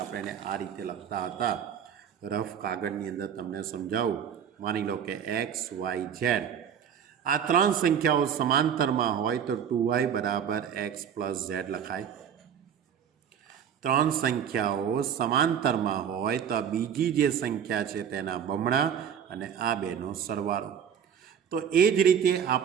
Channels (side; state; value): left; quieter; 8.3 dB